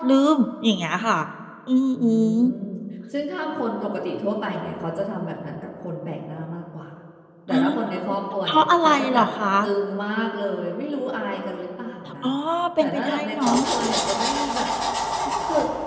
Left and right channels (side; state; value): both; identical; correlation 1.00